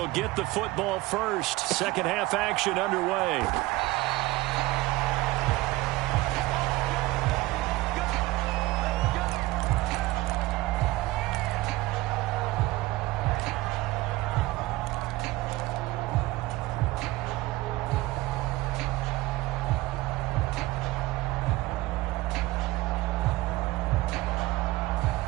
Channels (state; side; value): quieter; left; 19.1 dB